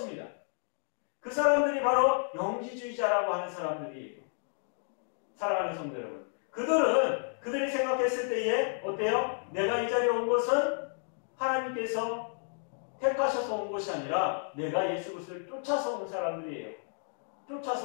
그 사람들이 바로 영지주의자라고 하는 사람들이에요. 사랑하는 성도 여러분, 그들이 생각했을 때에 어때요? 내가 이 자리에 온 것은 하나님께서 택하셔서 온 것이 아니라 내가 예수 그리스도를 쫓아서 온 사람들이에요.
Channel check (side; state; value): right; silent; 57 dB below the other